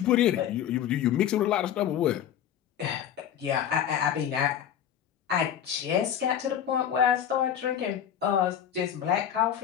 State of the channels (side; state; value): right; quieter; 9.7 dB